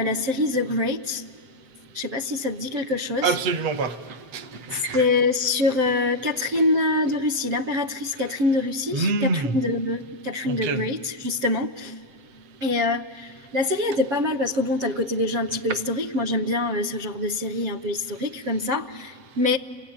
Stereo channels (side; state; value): left; late; 7.7 ms